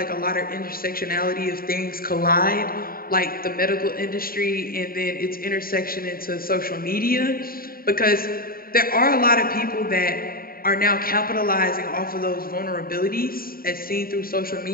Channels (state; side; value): late; right; 0.43 ms